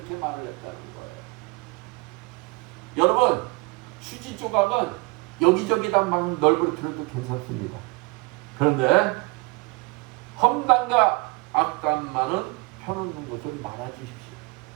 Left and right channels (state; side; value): quieter; left; 26.2 dB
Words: 말을 했다는 거예요. 여러분, 휴지 조각은 여기저기다 막 널브러뜨려도 괜찮습니다. 그런데 험담과 악담만은 펴놓는 것을 말아주십시오.